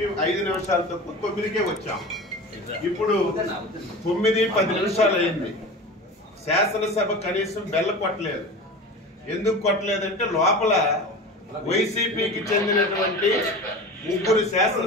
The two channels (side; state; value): both; normal; correlation 0.33